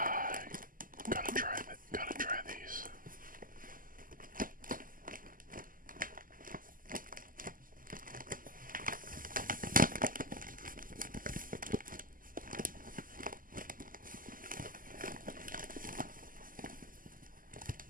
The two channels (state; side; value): late; left; 0.41 ms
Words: gotta try these.